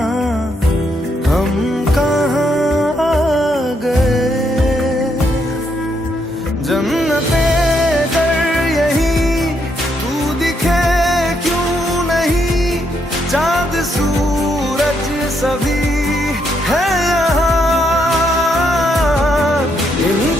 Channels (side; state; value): both; normal; correlation 0.76